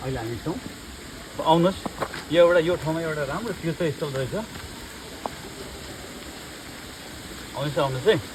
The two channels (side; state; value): both; identical; correlation 1.00